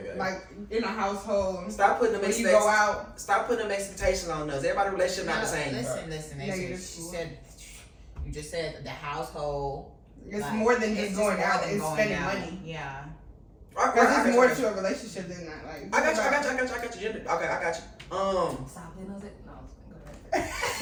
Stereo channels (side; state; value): both; identical; correlation 1.00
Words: okay. like in a household, Stop putting them when you expectations. go out, Stop putting them expectations on us. Everybody's relationship not the same. Listen. Negative. You just said the household. it's like, more than it's just going more out. than It's going spending out. money. Yeah. Because it's more to a relationship than that. Like I got you. Gender. Okay, I got you. Stop it. No, go ahead.